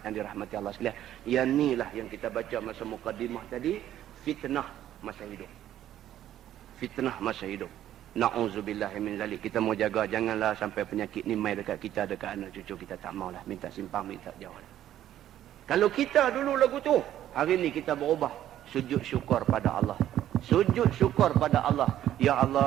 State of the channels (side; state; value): left; quieter; 12.0 dB